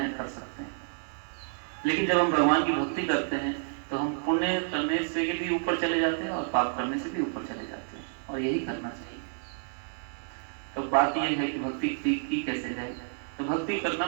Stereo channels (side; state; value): left; silent; digital silence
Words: कर सकते हैं। लेकिन जब हम भगवान की भक्ति करते हैं तो हम पुण्य करने से भी ऊपर चले जाते हैं और पाप करने से भी ऊपर चले जाते हैं, और यही करना चाहिए। तो बात यह है कि भक्ति की कैसे जाए। तो भक्ति करना